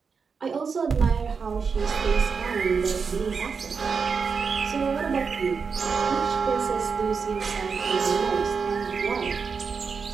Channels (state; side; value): quieter; left; 5.5 dB